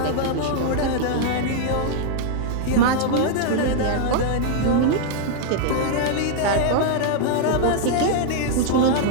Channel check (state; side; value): different; both; correlation -0.01